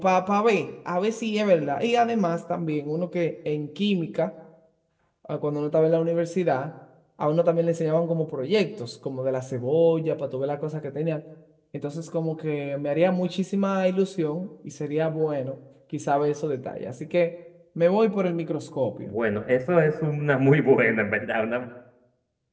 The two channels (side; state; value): both; identical; correlation 1.00